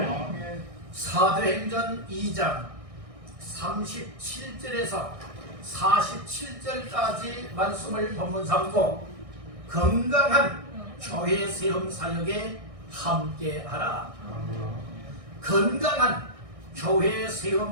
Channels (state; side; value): late; left; 1.6 ms